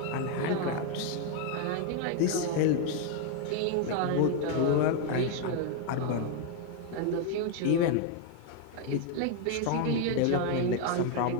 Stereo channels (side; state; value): both; different; correlation 0.01